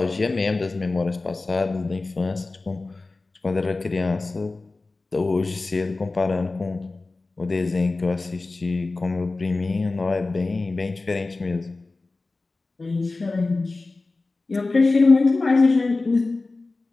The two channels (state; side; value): quieter; right; 3.4 dB